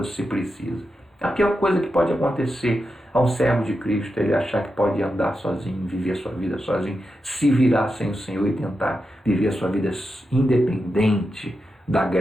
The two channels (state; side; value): normal; both; correlation 0.88